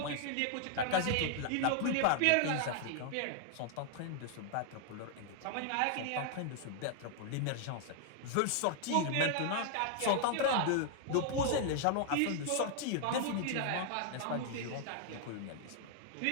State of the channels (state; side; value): different; both; correlation 0.00